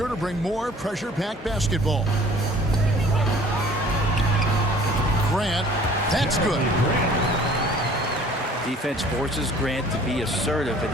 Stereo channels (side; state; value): both; normal; correlation 0.51